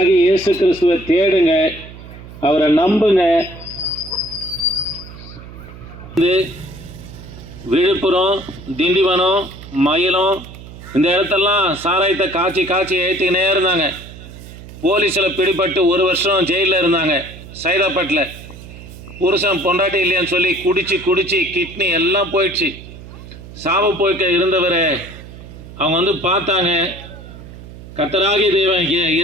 இயேசு கிறிஸ்துவை தேடுங்க, அவரை நம்புங்க. விழுப்புரம், திண்டிவனம், மயிலம் இந்த இடத்தெல்லாம் சாராயத்தை காய்ச்சி ஏற்றிக்கினே இருந்தாங்க. போலீஸில் பிடிபட்டு 1 வருஷம் ஜெயிலில் இருந்தாங்க. சைதாப்பேட்டில் புருஷன் பொண்டாட்டி இல்லையான்னு சொல்லி குடிச்சு கிட்னி எல்லாம் போயிடுச்சு. சாவு போய்க்க இருந்தவரை அவங்க வந்து பார்த்தாங்க. கர்த்தராகிய தேவன்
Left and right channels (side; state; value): right; noise; hum, 16 dB below the sound